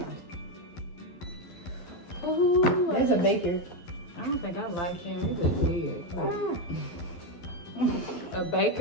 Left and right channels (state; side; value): late; right; 12 ms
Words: Ooh, There's a baker. I don't think I like him. He looks weird. A